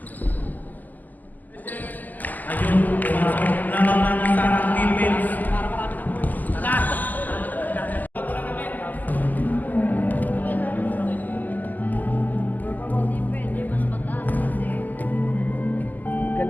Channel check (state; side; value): late; right; 0.083 ms